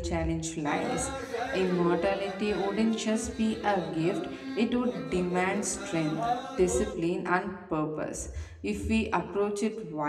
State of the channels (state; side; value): identical; both; correlation 1.00